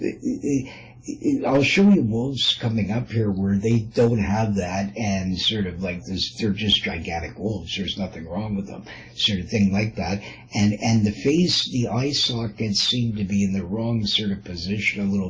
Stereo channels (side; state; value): both; identical; correlation 1.00